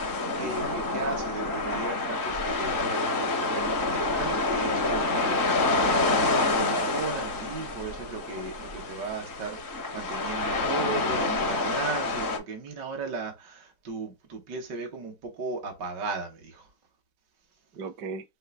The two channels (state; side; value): late; left; 3.9 ms